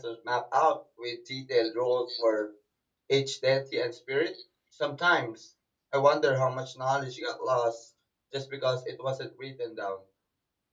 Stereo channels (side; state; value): both; identical; correlation 1.00